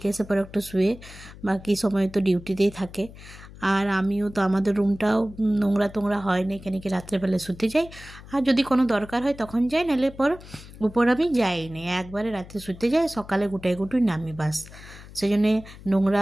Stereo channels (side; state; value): left; noise; hum, 17 dB below the sound